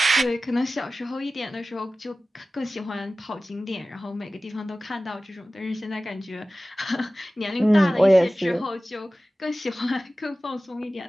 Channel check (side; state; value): both; normal; correlation 0.96